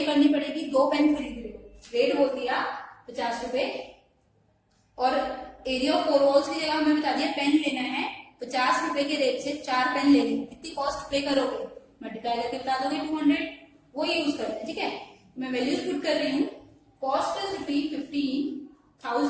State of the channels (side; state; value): both; identical; correlation 1.00